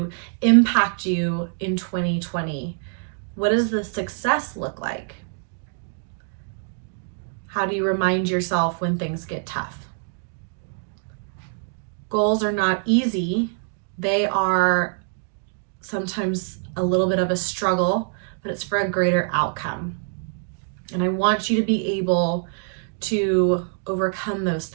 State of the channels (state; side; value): silent; left; 57 dB below the other